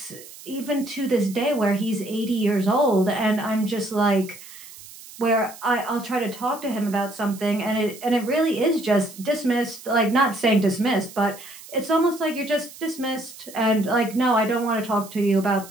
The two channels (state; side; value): noise; right; hiss, 17 dB below the sound